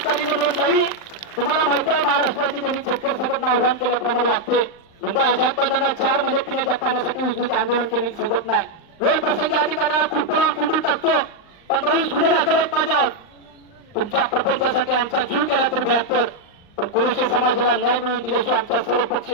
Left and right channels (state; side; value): late; right; 39 ms